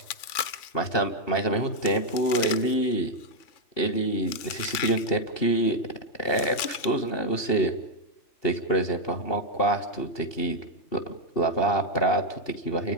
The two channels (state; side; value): late; right; 3.5 ms